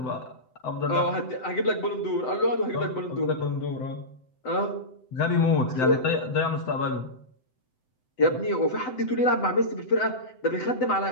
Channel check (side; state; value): right; late; 7.9 ms